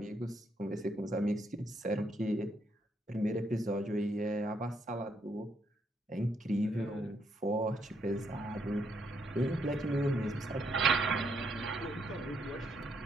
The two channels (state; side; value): normal; both; correlation 0.75